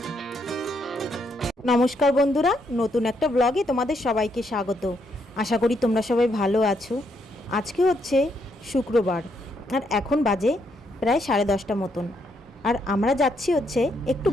নমস্কার বন্ধুরা, নতুন একটা ব্লগে তোমাদের সবাইকে স্বাগত। আশা করি তোমরা সবাই ভালো আছো। আজকে হচ্ছে শুক্রবার আর এখন বাজে প্রায় 10:30 মতন। আর আমরা যাচ্ছি হচ্ছে একটু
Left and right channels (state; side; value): normal; both; correlation 0.76